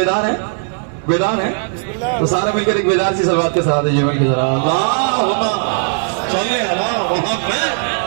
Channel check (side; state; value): left; silent; 61 dB below the other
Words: हैं, बेदार हैं, तो सारे मिलकर एक बेदार सी सलवात के साथ ये मिलकर जरा अल्लाहुम्मा सल्ली अला मुहम्मद।